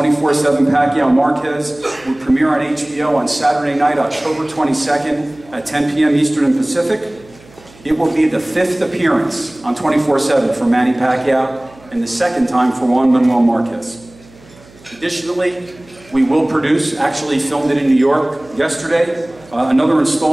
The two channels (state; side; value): noise; right; hum, 25 dB below the sound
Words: Pacquiao Marquez, will premiere on HBO on Saturday night, October 22nd at 10 p.m. Eastern and Pacific. It will be the 5th appearance on 24/7 for Manny Pacquiao and the 2nd time for Juan Manuel Marquez. Additionally, we will produce, actually filmed it in New York yesterday, another